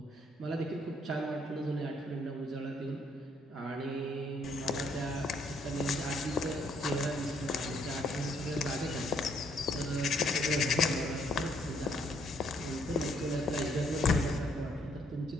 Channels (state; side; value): normal; both; correlation 0.68